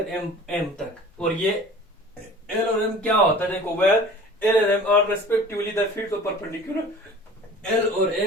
एम एम तक, और ये एल और एम क्या होता है, देखो, where L and M are respectively the fields of perpendicular, L और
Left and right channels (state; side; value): normal; both; correlation 0.44